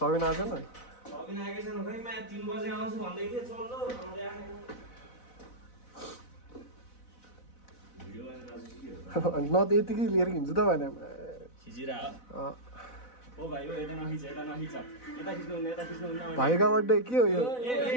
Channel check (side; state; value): right; late; 4.0 ms